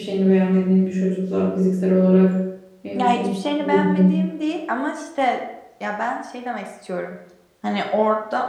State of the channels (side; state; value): both; identical; correlation 1.00